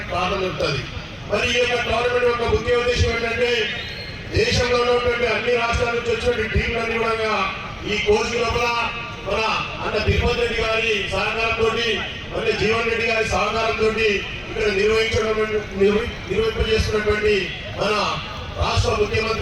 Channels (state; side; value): identical; both; correlation 1.00